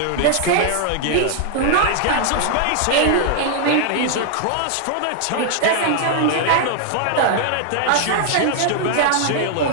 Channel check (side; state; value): both; different; correlation 0.00